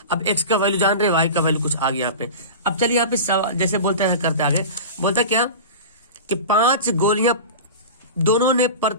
अब x का वैल्यू जान रहे, y का वैल्यू कुछ आ गया यहाँ पे। अब चलिए यहाँ पे जैसे बोलते हैं, करते आगे बोलता है क्या कि 5 गोलियां दोनों में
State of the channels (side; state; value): both; inverted; correlation -0.30